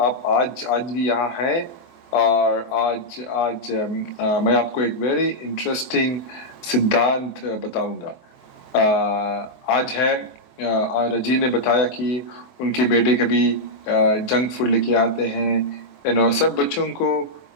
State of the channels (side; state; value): right; late; 23 ms